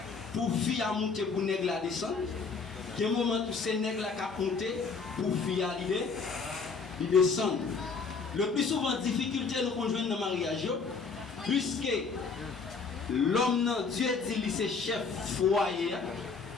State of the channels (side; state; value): right; quieter; 4.9 dB